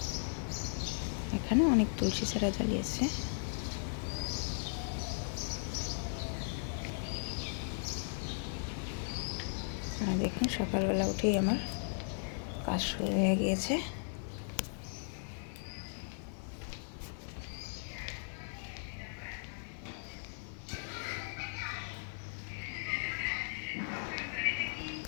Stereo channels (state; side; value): silent; right; digital silence